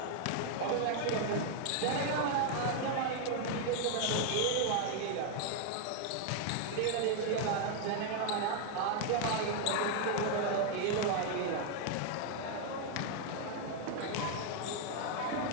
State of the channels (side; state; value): both; different; correlation 0.00